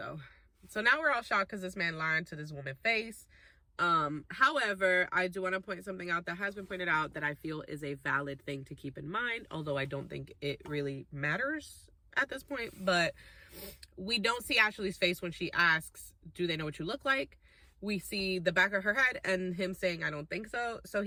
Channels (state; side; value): identical; both; correlation 1.00